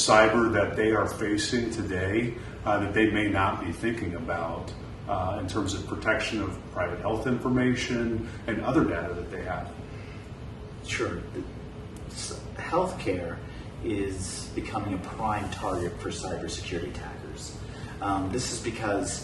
that they are facing today that they may not be thinking about in terms of protection of private health information and other data that they have. Sure. Healthcare is becoming a prime target for cybersecurity attackers. This is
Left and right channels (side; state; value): both; identical; correlation 1.00